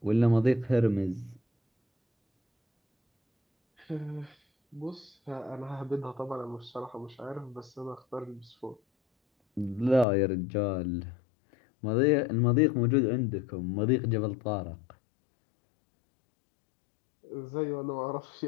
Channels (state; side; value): drops out; right; at 10.1 s